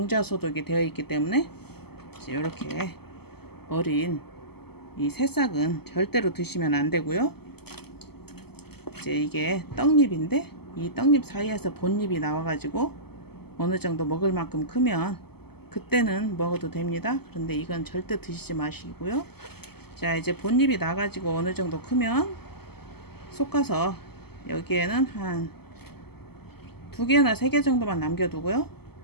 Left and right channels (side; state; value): right; late; 0.96 ms